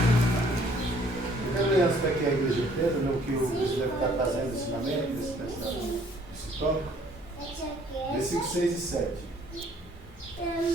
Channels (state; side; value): normal; both; correlation 0.60